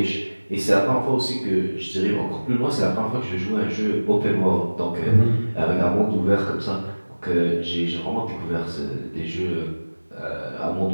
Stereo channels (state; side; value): inverted; both; correlation -1.00